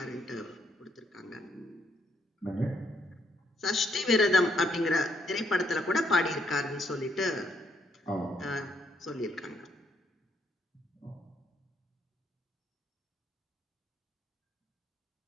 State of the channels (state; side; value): normal; both; correlation 0.73